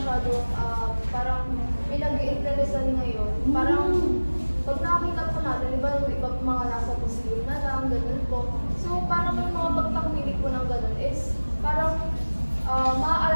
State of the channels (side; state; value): both; inverted; correlation -1.00